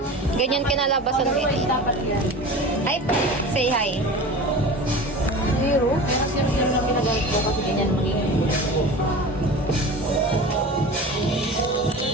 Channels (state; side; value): normal; both; correlation 0.34